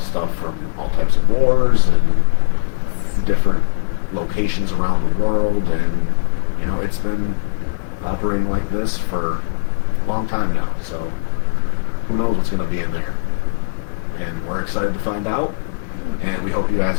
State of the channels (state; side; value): silent; right; digital silence